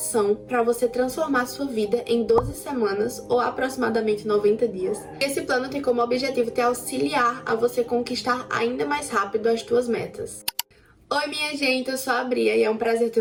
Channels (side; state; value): both; identical; correlation 1.00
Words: para você transformar sua vida em 12 semanas ou aproximadamente 90 dias. Esse plano tem como objetivo te auxiliar a você conquistar ainda mais rápido as tuas metas. Oi minha gente, eu sou a Bria e é um prazer